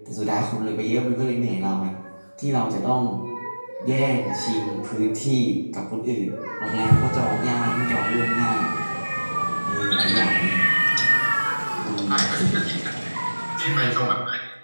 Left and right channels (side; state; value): both; inverted; correlation -1.00